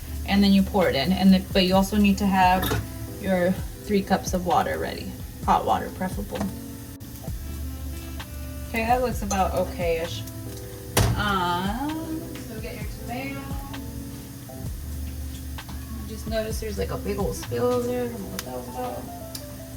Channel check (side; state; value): both; identical; correlation 1.00